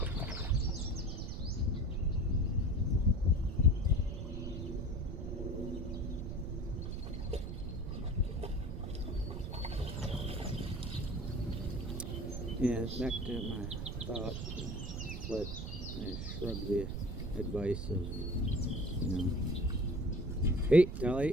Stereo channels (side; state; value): right; noise; rumble, 4 dB below the sound